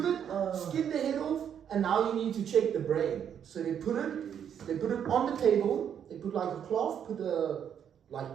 it, skin the head off, and now you need to check the brain. So they put it on the table. They put like a cloth, put a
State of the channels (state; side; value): quieter; left; 8.7 dB